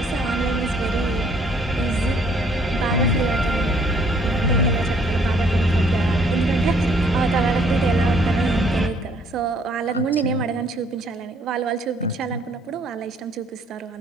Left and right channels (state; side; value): normal; both; correlation 0.63